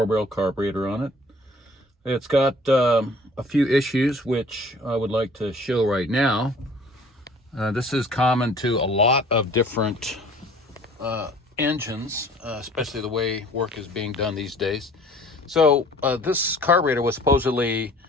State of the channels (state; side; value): normal; both; correlation 0.51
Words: carburetor on it. It's got a few issues which I would like to show right now. This is common to a lot of different engines, especially the way work is being done these days. So this carburetor was supposedly